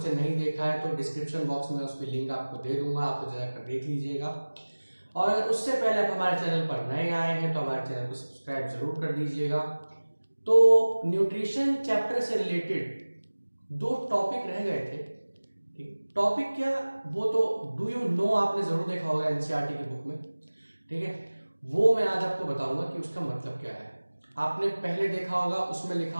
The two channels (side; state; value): both; inverted; correlation -1.00